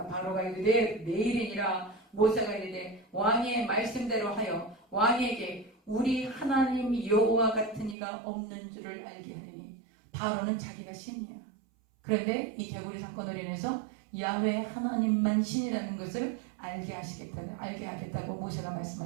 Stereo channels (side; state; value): left; drops out; at 8.0 s